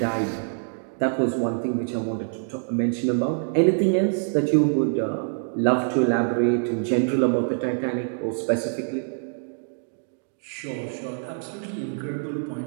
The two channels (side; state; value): left; silent; digital silence